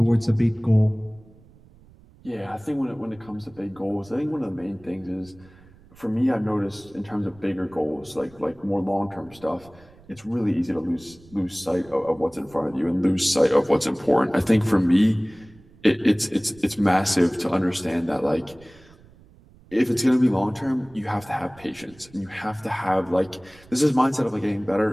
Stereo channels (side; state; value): right; noise; rumble, 25 dB below the sound